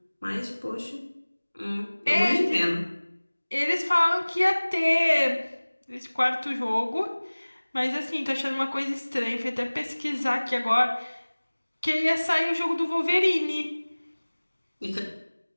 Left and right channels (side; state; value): both; inverted; correlation -1.00